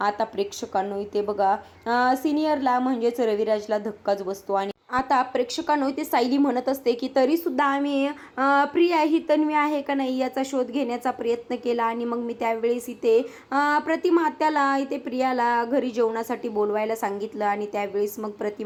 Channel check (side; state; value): both; identical; correlation 1.00